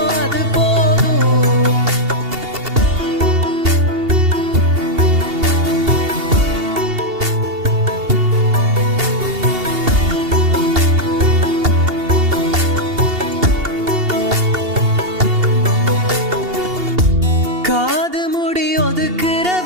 அது போதும் காது முடி ஒதுக்குற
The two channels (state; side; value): late; left; 2.8 ms